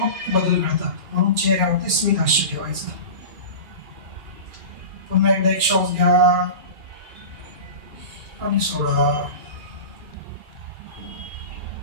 बदल घडतात. म्हणून चेहऱ्यावरती स्मित हास्य ठेवायचं. पुन्हा एकदा एक श्वास घ्या आणि सोडा.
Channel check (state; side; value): late; left; 2.4 ms